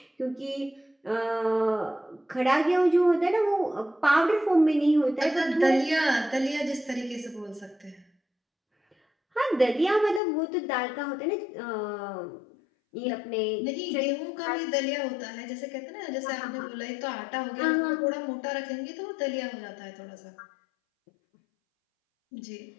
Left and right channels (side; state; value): right; drops out; at 10.2 s